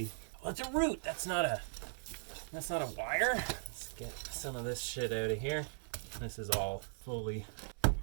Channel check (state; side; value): silent; left; 52 dB below the other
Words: Oh, it's a root! That's not a wire. Let's get some of this shit out of here. This is all fully